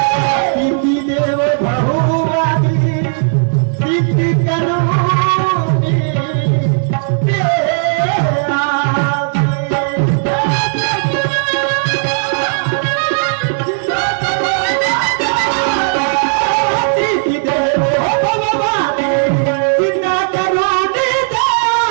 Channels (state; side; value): silent; left; digital silence